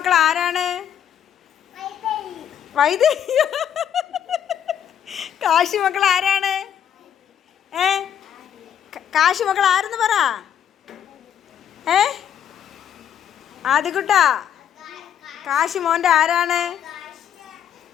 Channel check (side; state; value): right; quieter; 9.4 dB